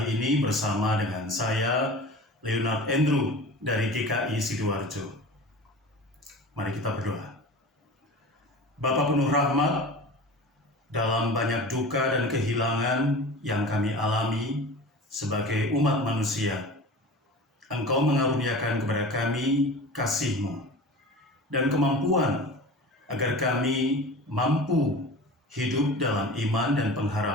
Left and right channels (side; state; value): both; normal; correlation 0.36